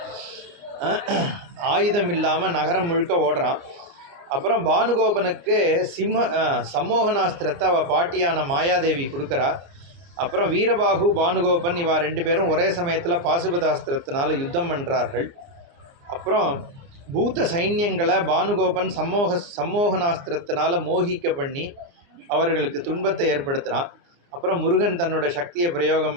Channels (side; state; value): left; late; 29 ms